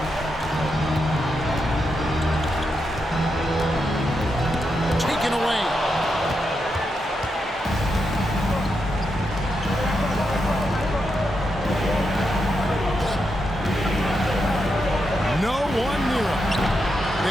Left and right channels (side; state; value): both; normal; correlation 0.84